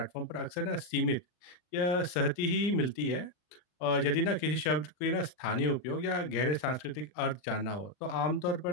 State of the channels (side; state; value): right; late; 39 ms